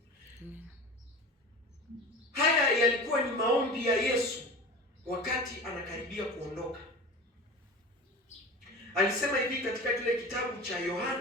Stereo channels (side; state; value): both; normal; correlation 0.33